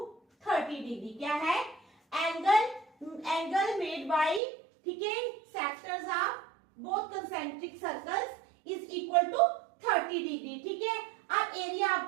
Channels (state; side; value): drops out; left; at 4.4 s